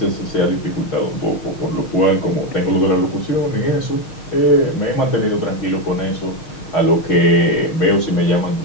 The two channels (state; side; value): late; right; 6.4 ms